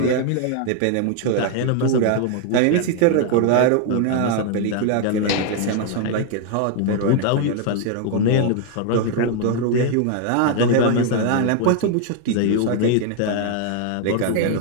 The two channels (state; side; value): different; both; correlation 0.00